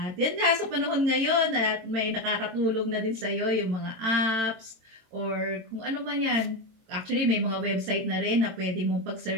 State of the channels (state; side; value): late; left; 22 ms